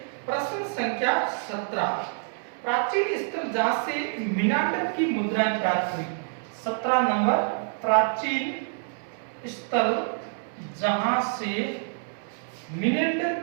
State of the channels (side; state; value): left; silent; 58 dB below the other